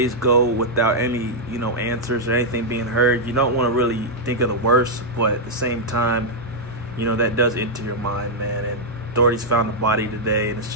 go without any, answers or anything being heard, you don't want to really think of the worst, but at the same time, that does enter your mind, man. And authorities found the body today, and it's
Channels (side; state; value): both; normal; correlation -0.04